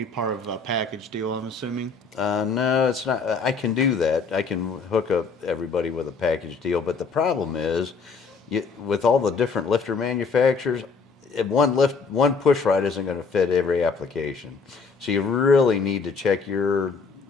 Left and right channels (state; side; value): quieter; right; 4.8 dB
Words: part of a package deal, I'm assuming. No, it's not. I can do that. I can hook up everybody with a package deal, but the problem is, with all the different lifter manufacturers, one push rod isn't going to fit every application. So you really need to check your,